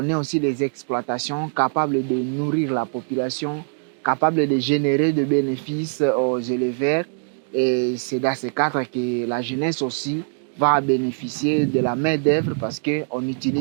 ait aussi des exploitations capables de nourrir la population, capables de générer de bénéfices aux éleveurs. Et c'est dans ce cadre que la jeunesse aussi va bénéficier de la main-d'œuvre parce qu'on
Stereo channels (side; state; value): left; silent; 64 dB below the other